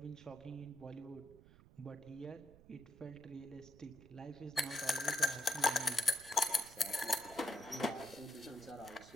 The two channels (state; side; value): noise; right; rumble, 21 dB below the sound